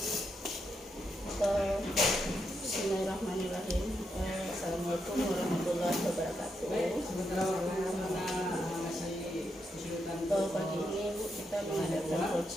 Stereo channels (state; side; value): normal; both; correlation 0.82